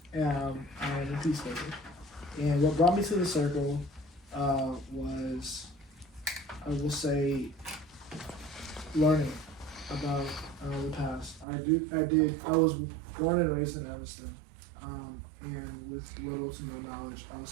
a peacemaker. And what brought me to the circle was, I will say, learning about the past. I was born and raised in Evanston, and with little to no knowledge, I'll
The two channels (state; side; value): drops out; left; at 11.5 s